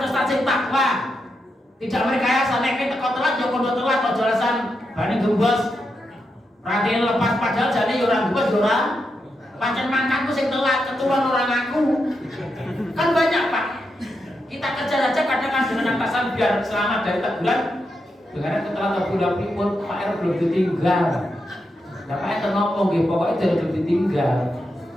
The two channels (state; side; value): normal; both; correlation 0.85